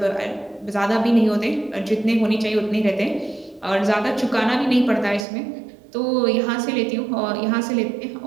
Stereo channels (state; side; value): drops out; left; at 5.2 s